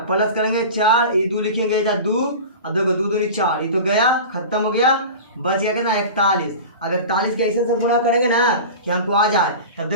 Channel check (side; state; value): both; inverted; correlation -0.33